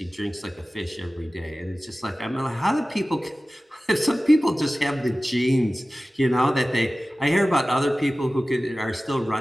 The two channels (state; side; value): normal; both; correlation 0.96